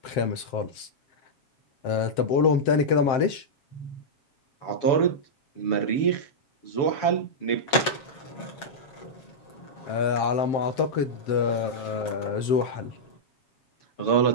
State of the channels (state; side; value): late; right; 7.3 ms